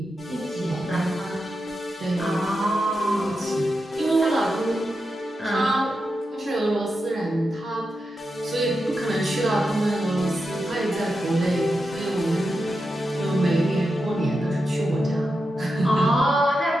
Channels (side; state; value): both; normal; correlation 0.88